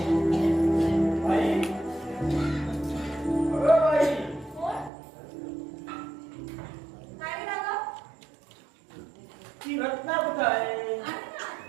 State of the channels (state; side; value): drops out; left; at 4.9 s